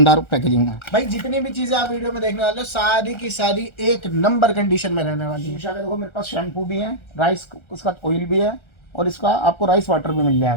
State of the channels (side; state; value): right; late; 1.3 ms